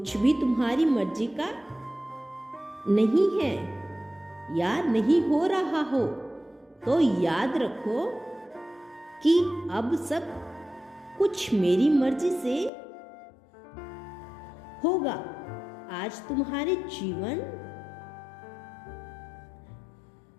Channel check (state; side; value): drops out; right; at 12.7 s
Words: भी तुम्हारी मर्जी का नहीं है या नहीं हो रहा हो, तो याद रखो कि अब सब कुछ मेरी मर्जी से होगा। आज तुम्हारे जीवन